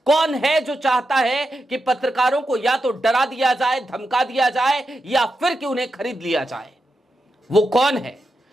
कौन है जो चाहता है कि पत्रकारों को या तो डरा दिया जाए, धमका दिया जाए या फिर कि उन्हें खरीद लिया जाए? वो कौन है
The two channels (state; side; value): normal; both; correlation 0.87